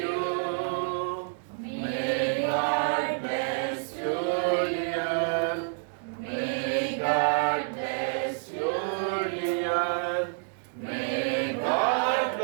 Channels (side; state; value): left; silent; digital silence